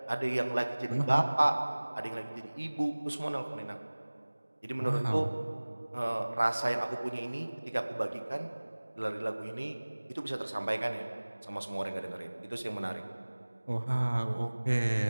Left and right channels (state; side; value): inverted; both; correlation -1.00